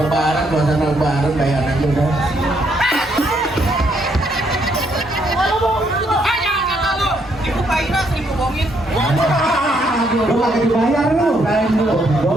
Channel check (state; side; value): normal; both; correlation 0.73